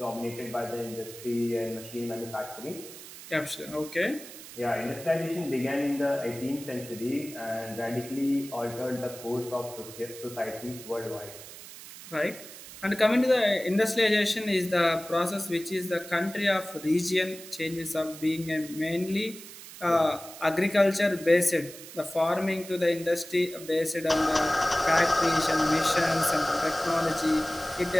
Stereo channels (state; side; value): noise; right; hiss, 15 dB below the sound